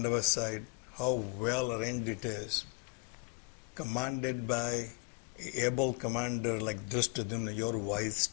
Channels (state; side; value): quieter; right; 30.8 dB